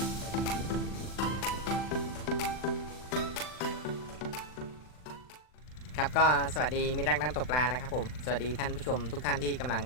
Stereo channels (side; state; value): right; late; 39 ms